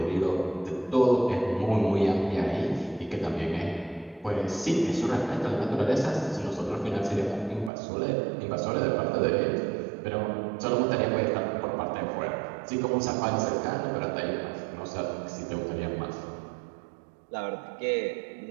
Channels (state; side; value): drops out; left; at 7.7 s